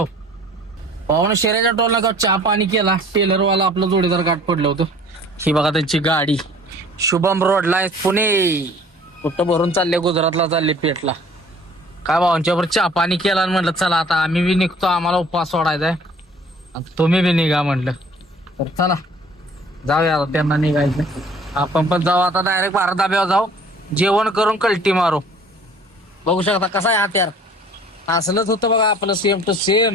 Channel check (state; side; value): normal; both; correlation 0.51